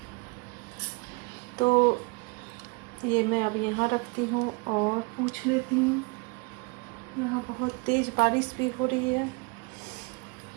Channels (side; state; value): left; quieter; 30.8 dB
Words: तो ये मैं अब यहाँ रखती हूँ और पूछ लेती हूँ। यहाँ बहुत तेज़ बारिश भी हो रही है।